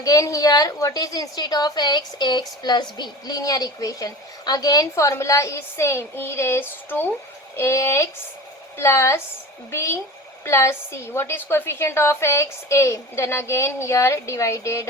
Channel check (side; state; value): both; normal; correlation 0.34